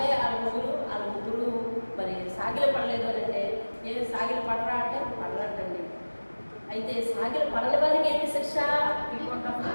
వాళ్ళ ముగ్గురు మరి సాగిలు పడలేదు అని అంటే, ఏమి సాగిలు పడరా అంటే పడరంటండి. అయితే సాగిలు పడని వారికి ఏంటి శిక్ష?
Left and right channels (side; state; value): both; inverted; correlation -1.00